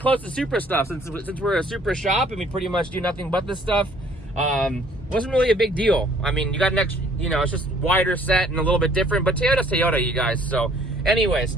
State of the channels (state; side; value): normal; both; correlation 0.59